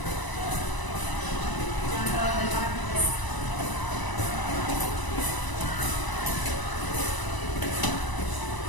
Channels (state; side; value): late; right; 1.0 ms